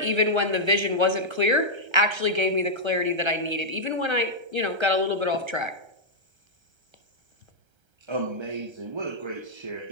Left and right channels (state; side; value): late; left; 1.3 ms